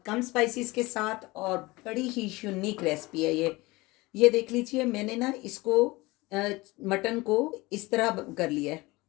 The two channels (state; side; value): quieter; right; 21.9 dB